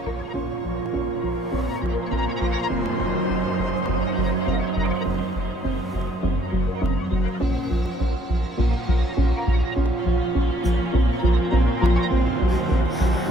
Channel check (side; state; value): both; normal; correlation 0.63